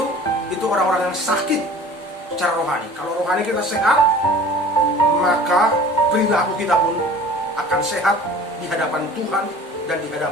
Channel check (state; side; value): normal; both; correlation 0.45